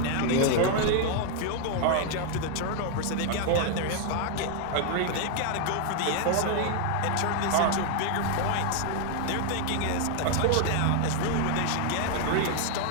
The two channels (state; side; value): different; both; correlation 0.00